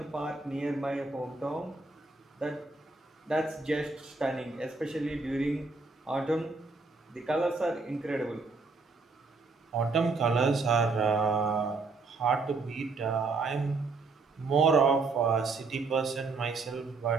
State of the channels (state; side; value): quieter; left; 4.0 dB